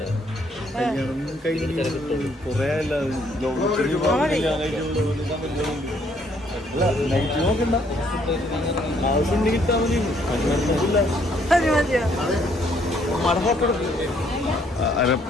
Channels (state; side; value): normal; both; correlation 0.67